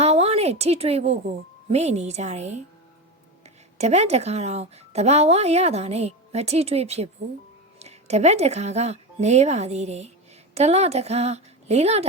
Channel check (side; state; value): both; normal; correlation 0.20